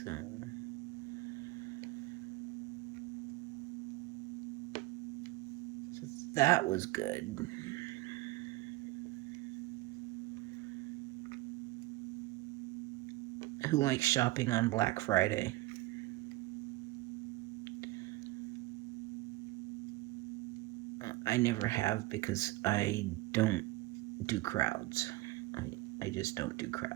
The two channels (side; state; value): left; quieter; 19.2 dB